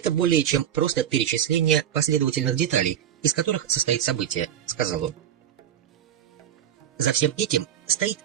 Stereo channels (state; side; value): quieter; left; 10.1 dB